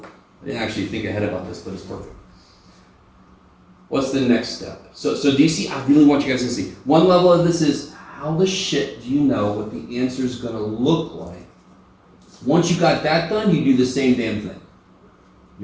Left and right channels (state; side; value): identical; both; correlation 1.00